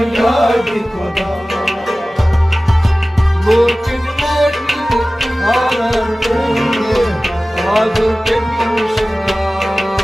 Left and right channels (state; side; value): normal; both; correlation 0.97